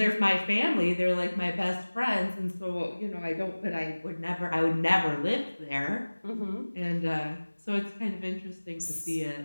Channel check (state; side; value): inverted; both; correlation -1.00